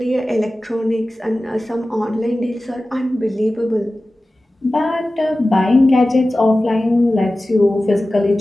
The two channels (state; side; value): normal; both; correlation 0.96